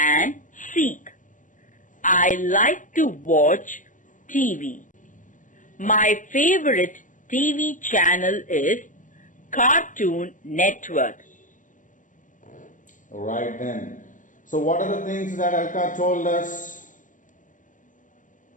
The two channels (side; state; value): right; late; 0.37 ms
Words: seek. I like to watch TV. My favorite TV channel is Cartoon Network. Right then. So what are the things that Alka told us?